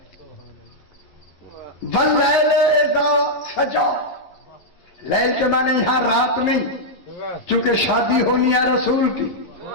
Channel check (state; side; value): late; right; 11 ms